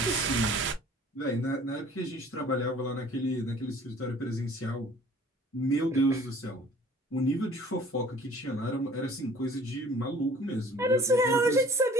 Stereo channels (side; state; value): both; normal; correlation 0.50